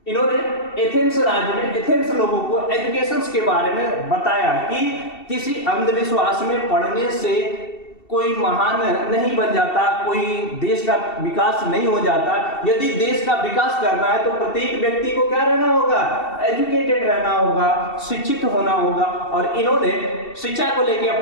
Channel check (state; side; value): late; right; 2.7 ms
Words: इन्होंने एथेंस राज्य में एथेंस लोगों को एजुकेशन के बारे में बताया कि किसी अंधविश्वास में पढ़ने से कोई महान नहीं बन जाता, कोई देश का विकास नहीं हो जाता। यदि देश का विकास करना है तो प्रत्येक व्यक्ति को क्या रहना होगा, एजुकेटेड रहना होगा, शिक्षित होना होगा। और इन्होंने शिक्षा को लेकर